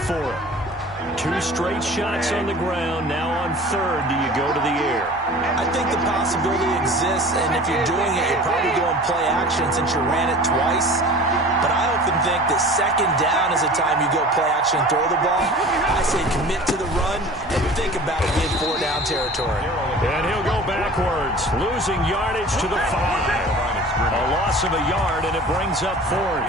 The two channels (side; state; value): both; normal; correlation 0.41